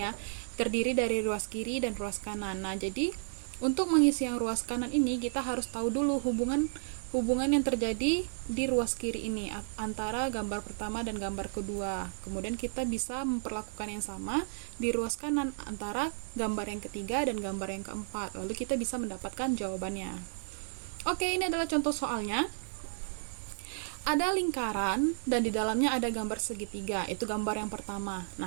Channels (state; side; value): silent; left; digital silence